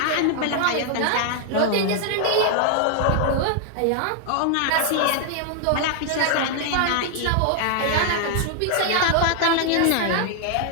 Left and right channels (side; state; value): both; different; correlation 0.00